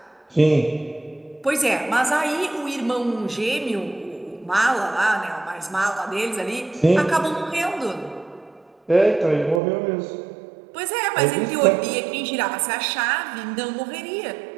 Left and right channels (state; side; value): drops out; left; at 9.6 s